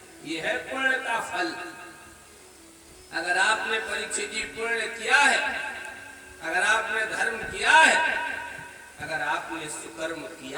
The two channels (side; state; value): both; identical; correlation 1.00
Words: ये है पुण्य का फल। अगर आपने परीक्षित जी पुण्य किया है, अगर आपने धर्म किया है, अगर आपने सुकर्म